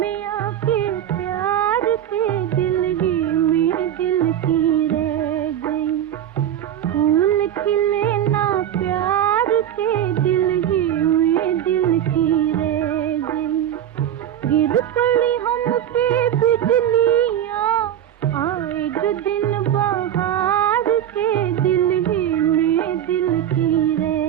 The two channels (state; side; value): quieter; left; 10.7 dB